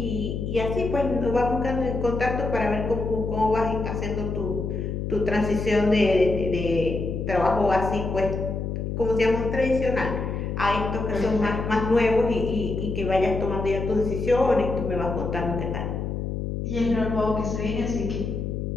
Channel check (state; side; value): noise; left; hum, 3 dB below the sound